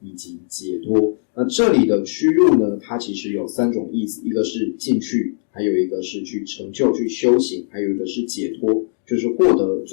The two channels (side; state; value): right; silent; digital silence